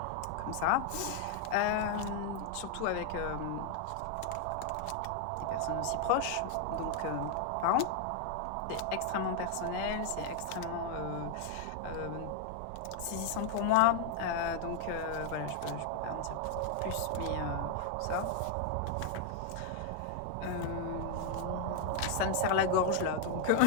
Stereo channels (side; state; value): both; different; correlation 0.00